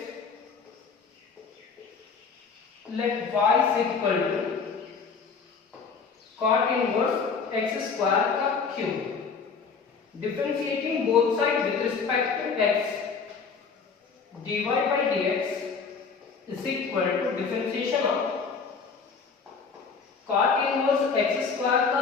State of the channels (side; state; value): right; quieter; 5.3 dB